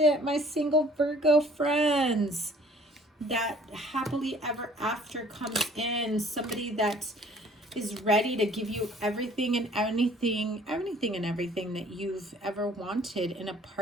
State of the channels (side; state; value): both; normal; correlation 0.55